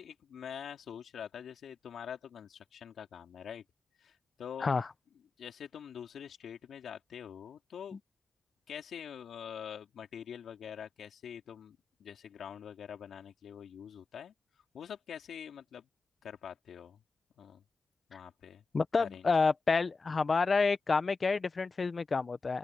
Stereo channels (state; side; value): quieter; right; 4.3 dB